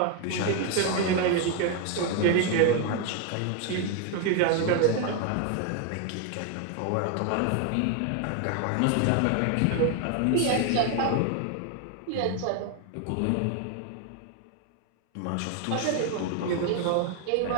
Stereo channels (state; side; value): different; both; correlation 0.01